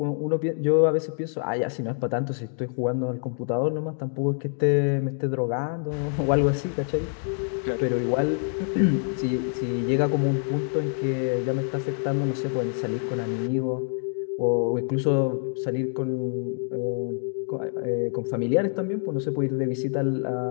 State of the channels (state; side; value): silent; right; 59 dB below the other